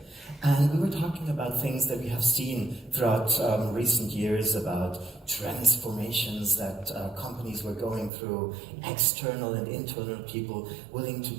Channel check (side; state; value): left; drops out; at 8.1 s